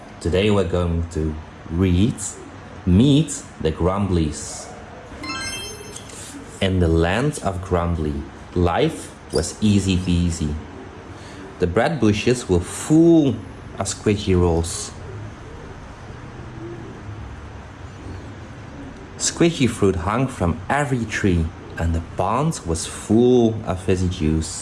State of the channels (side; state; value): both; identical; correlation 1.00